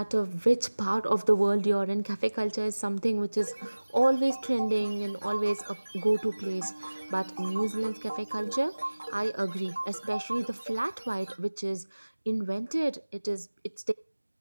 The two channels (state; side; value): inverted; both; correlation -1.00